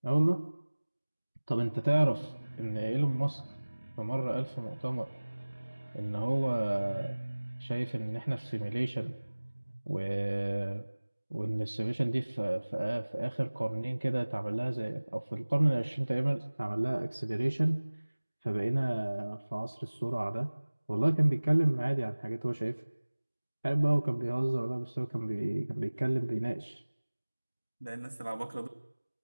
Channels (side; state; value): both; inverted; correlation -1.00